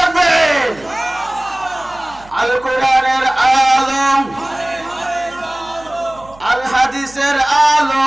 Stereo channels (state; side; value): noise; right; hum, 24 dB below the sound